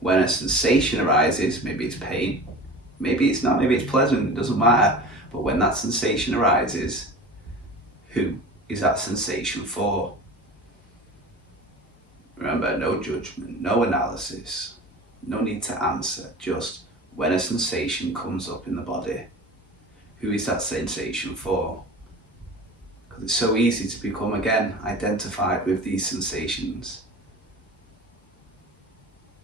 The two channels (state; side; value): normal; both; correlation 0.36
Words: when a sensation arises. Maybe it's pain, maybe it's not, maybe it's pleasant, it doesn't matter. But when that sensation arises, who is that sensation for? Remember, no judgment, no analysis, no need to answer, just when a sensation comes up in the body, who is that sensation for? Because it's so easy to become, again, identified with these sensations.